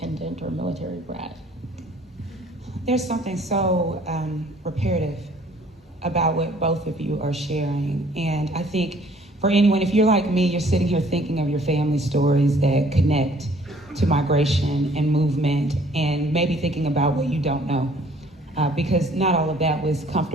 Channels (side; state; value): both; normal; correlation 0.58